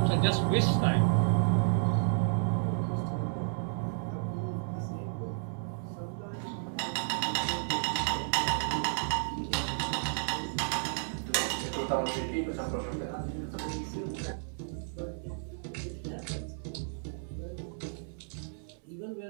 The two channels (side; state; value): left; silent; 56 dB below the other